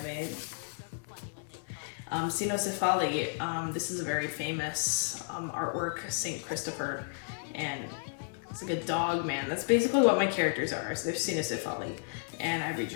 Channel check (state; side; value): silent; right; 56 dB below the other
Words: made. Cynocephali, this is a very famous artwork, St. Christopher, and it's like a dog man. That's basically what my characters are. So they're Cynocephali, and I